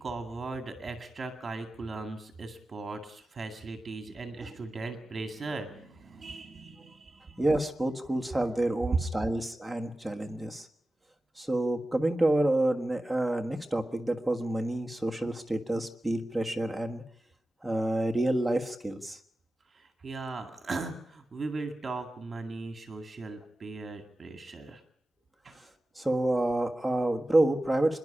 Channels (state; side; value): normal; both; correlation 0.94